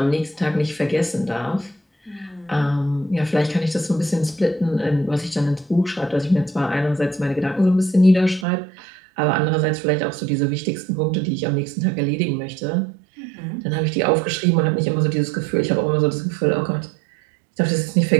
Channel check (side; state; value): left; drops out; at 8.5 s